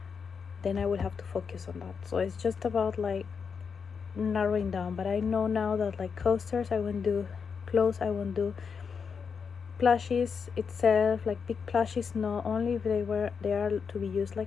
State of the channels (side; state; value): right; quieter; 6.0 dB